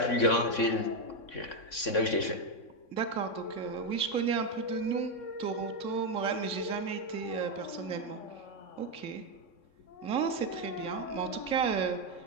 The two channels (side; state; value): right; late; 3.6 ms